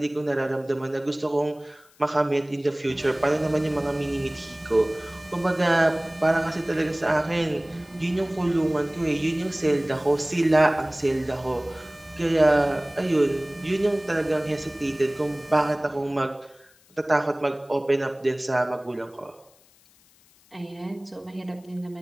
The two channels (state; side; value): noise; left; hiss, 30 dB below the sound